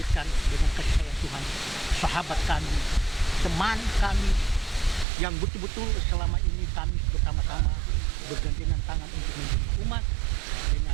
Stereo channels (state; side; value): drops out; left; at 5.1 s